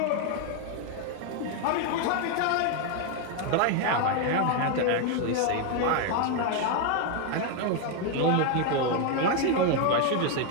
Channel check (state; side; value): different; both; correlation 0.01